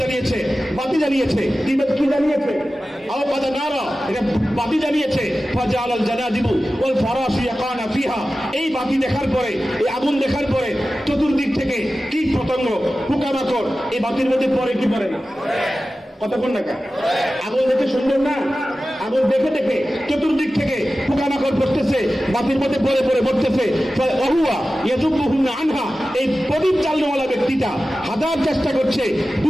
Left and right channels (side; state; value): both; normal; correlation 0.95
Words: বাতি জ্বালিয়েছে, কি জ্বালিয়েছে? আওকাদা নারা, এটা বাতি জ্বালিয়েছে, ফাজালাল জানাদিবু ওয়াল ফারাশু ইয়াকানা ফিহা, এই বাতি দেখার পরে, এই আগুন দেখার পরে চতুর্দিক থেকে কীট পতঙ্গ, পোকামাকড় এই বাতির মধ্যে পড়ে কি পড়ে না? কতক্ষণ না? আগুন দেখে সুন্দর না? আগুন দেখে দেখে চতুর্দিক থেকে পোকামাকড় পড়তেছে, বাতির মধ্যে পড়ে পড়ে পড়তেছে। ওহুয়া ইয়াযুবুহুন্না আনহা, এই প্রদীপ জ্বালানোওয়ালা ব্যক্তিটা হাজার চেষ্টা করছে,